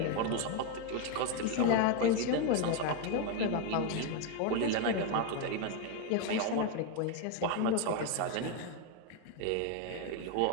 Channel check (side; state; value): both; different; correlation 0.01